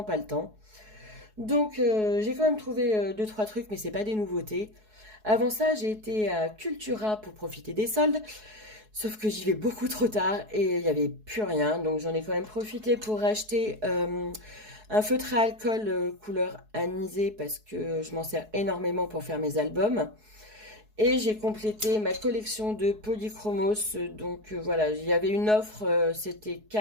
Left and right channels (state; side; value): late; left; 4.7 ms